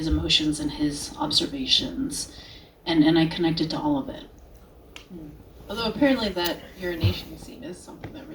emotions and his observations, and I connected to all of it. Although apparently that urination scene is something that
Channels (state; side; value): identical; both; correlation 1.00